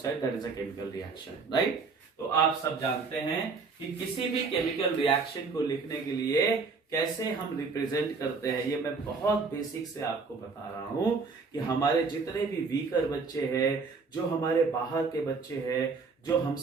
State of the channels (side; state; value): left; quieter; 4.6 dB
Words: that is a chemical reaction, right? तो आप सब जानते हैं कि किसी भी केमिकल रिएक्शन को लिखने के लिए कैसे हम रिप्रेजेंट करते हैं. ये मैं बहुत बेसिक से आपको बता रहा हूं कि हमारे जितने भी वीकर बच्चे हैं, जो हमारे बाहर के बच्चे हैं, जो